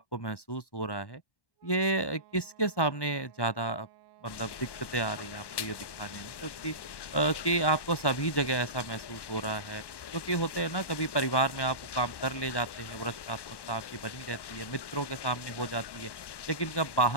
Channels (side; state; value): right; late; 1.1 ms